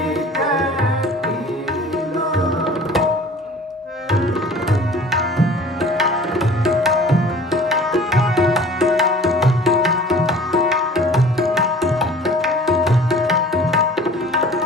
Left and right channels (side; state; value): both; normal; correlation 0.46